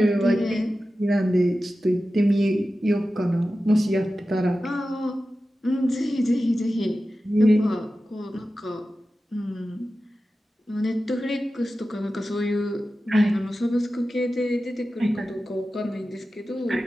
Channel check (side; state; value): both; normal; correlation 0.94